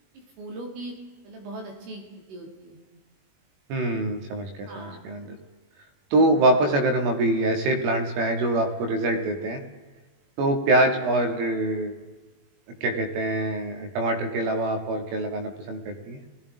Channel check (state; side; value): late; left; 21 ms